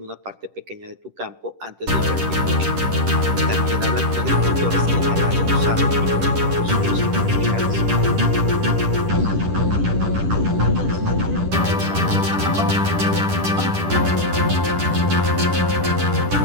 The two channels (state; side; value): late; left; 10 ms